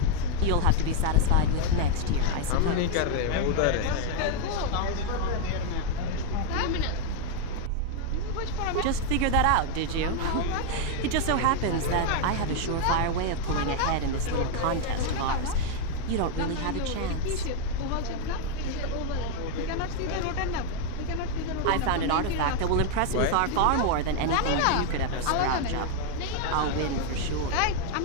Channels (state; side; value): different; both; correlation 0.01